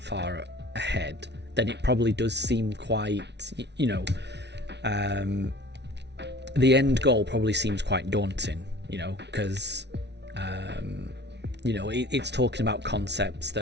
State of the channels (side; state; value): left; late; 0.50 ms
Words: far ahead, then it probably does seem quite, you know, the end goal probably seems quite daunting, you know, because, you know, it's talking about concepts